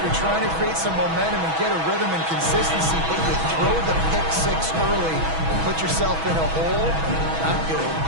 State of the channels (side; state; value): left; late; 6.2 ms